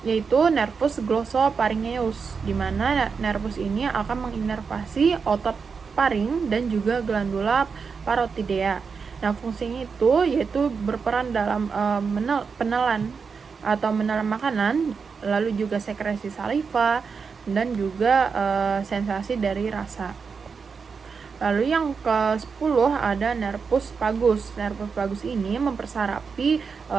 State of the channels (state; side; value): quieter; left; 5.5 dB